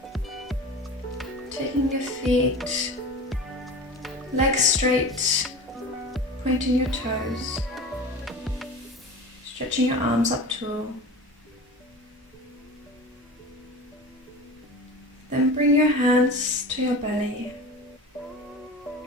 Taking your feet, legs straight, pointing your toes, stretching your arms up tall. Then bring your hands to your belly.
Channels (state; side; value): normal; both; correlation 0.33